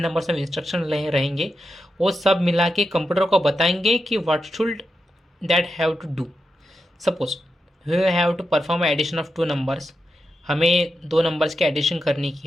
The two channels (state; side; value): normal; both; correlation 0.88